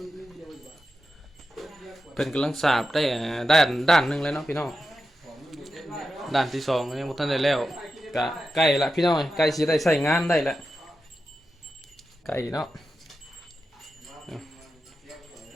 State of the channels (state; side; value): normal; both; correlation 0.90